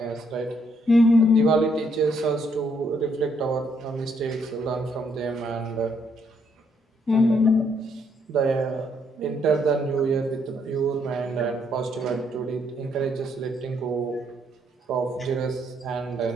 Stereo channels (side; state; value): both; normal; correlation 0.72